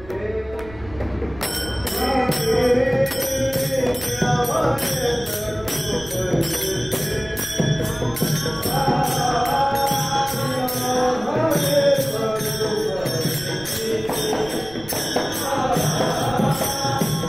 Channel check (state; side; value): noise; right; rumble, 19 dB below the sound